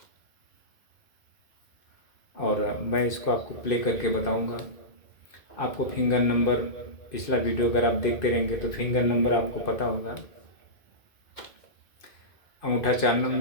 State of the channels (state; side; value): late; right; 2.1 ms